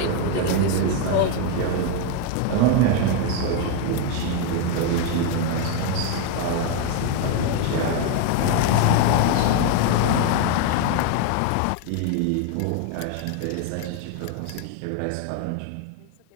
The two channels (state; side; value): different; both; correlation 0.01